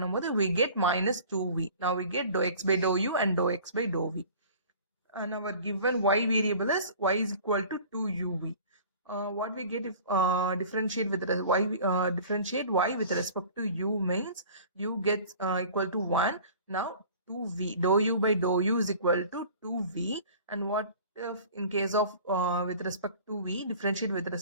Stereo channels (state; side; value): inverted; both; correlation -0.45